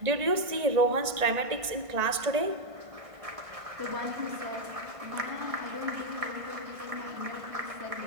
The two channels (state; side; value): late; left; 1.5 ms